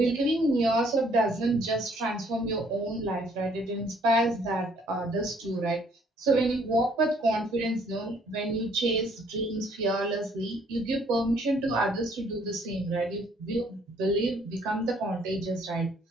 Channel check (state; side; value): normal; both; correlation 0.63